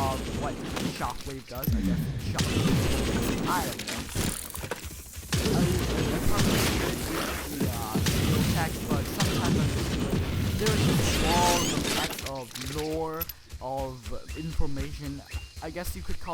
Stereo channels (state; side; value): identical; both; correlation 1.00